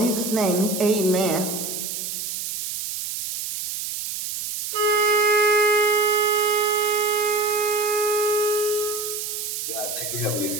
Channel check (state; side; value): noise; right; hiss, 4 dB below the sound